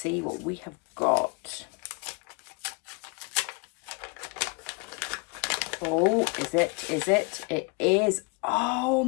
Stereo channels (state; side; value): quieter; right; 31.0 dB